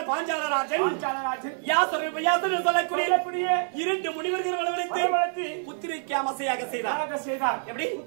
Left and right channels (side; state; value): left; silent; 60 dB below the other